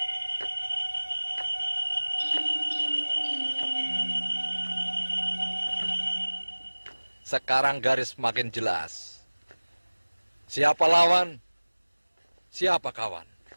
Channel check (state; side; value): inverted; both; correlation -1.00